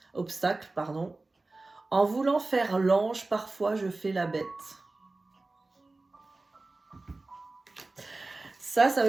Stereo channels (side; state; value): left; quieter; 3.2 dB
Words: Obstacle, pardon. En voulant faire l'ange, parfois je fais la bête. Ça